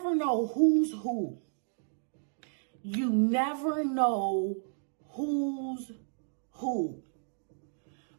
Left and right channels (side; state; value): left; silent; digital silence